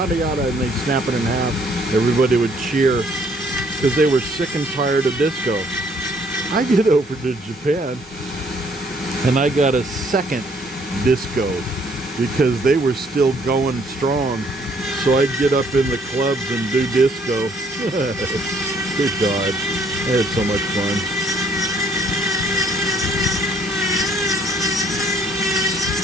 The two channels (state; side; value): normal; both; correlation 0.64